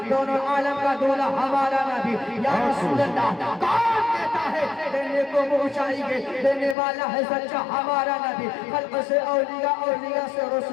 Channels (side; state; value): right; drops out; at 6.8 s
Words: دونوں عالم کا دولا ہمارا نبی، یا رسول اللہ کون دیتا ہے؟ دینے کو منہ چاہیے، دینے والا ہے سچا ہمارا نبی، خلق سے اولیاء، اولیاء سے